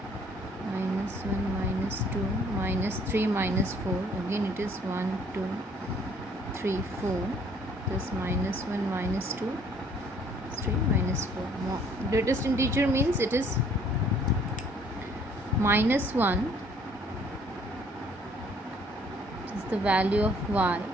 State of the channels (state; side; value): normal; both; correlation 0.60